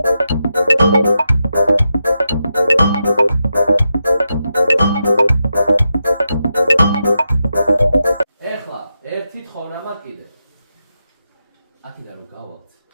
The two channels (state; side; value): inverted; both; correlation -0.87